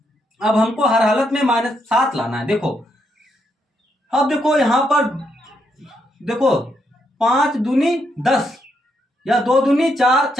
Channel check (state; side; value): normal; both; correlation 0.78